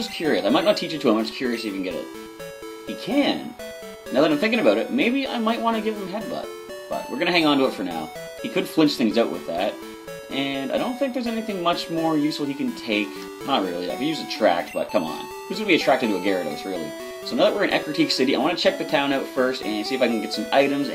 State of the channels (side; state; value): both; identical; correlation 1.00